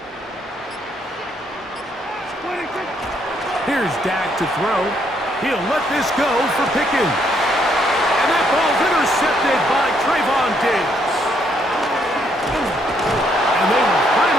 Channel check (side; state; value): both; normal; correlation 0.72